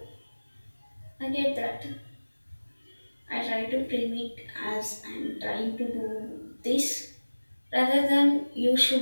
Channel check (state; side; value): inverted; both; correlation -1.00